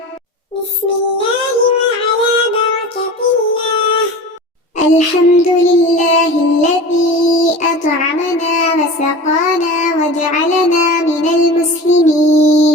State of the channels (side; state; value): both; normal; correlation 0.34